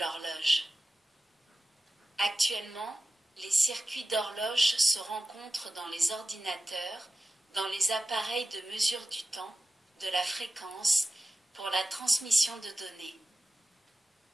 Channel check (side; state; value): both; normal; correlation 0.94